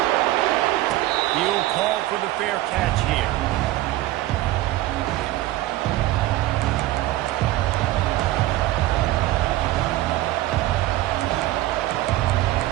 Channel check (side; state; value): left; quieter; 16.2 dB